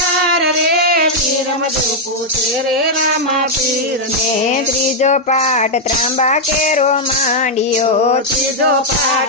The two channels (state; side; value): normal; both; correlation -0.03